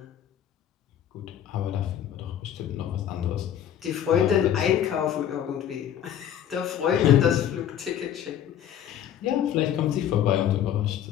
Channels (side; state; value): right; quieter; 10.1 dB